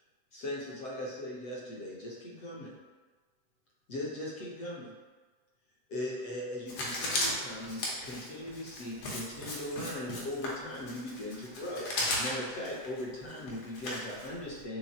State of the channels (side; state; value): right; late; 8.3 ms